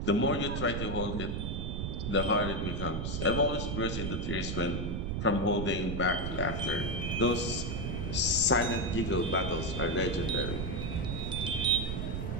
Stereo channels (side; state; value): right; noise; rumble, 2 dB below the sound